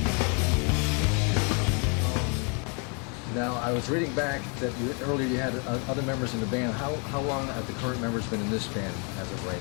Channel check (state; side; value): quieter; right; 36.6 dB